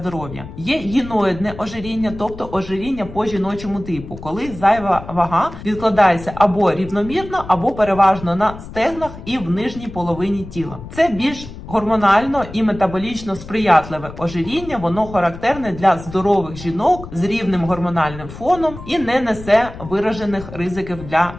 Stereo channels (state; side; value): noise; left; rumble, 14 dB below the sound